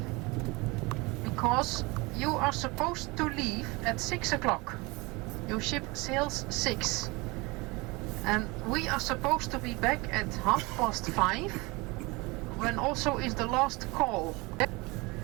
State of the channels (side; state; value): left; quieter; 24.9 dB